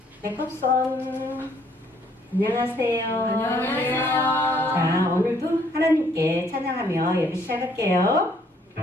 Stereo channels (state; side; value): normal; both; correlation 0.65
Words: 백합선 안녕하세요. 안녕하세요. 자, 오늘도 하나님께 찬양하며 예배 시작할게요.